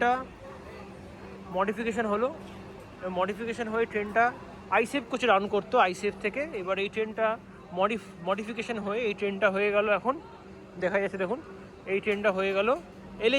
মডিফিকেশান হলো, মডিফিকেশান হয়ে ট্রেনটা আইসেফ কোচে রান করতো আইসেফ থেকে। এবার এই ট্রেনটা মডিফিকেশান হয়ে এই ট্রেনটা হয়ে গেল, এখন দেখা যাচ্ছে দেখুন এই ট্রেনটা হয়ে গেল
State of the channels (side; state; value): both; identical; correlation 1.00